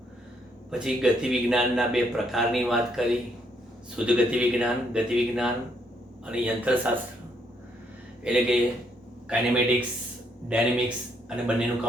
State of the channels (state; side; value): normal; both; correlation 0.72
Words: પછી ગતિ વિજ્ઞાનના 2 પ્રકારની વાત કરી, શુદ્ધ ગતિ વિજ્ઞાન અને યંત્રશાસ્ત્ર, એટલે કે કાઇનેમેટિક્સ, ડાયનેમિક્સ અને બંનેનું